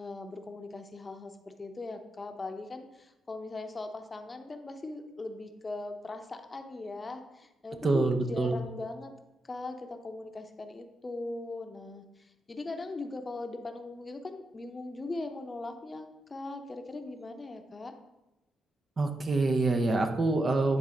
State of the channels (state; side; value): normal; both; correlation 0.86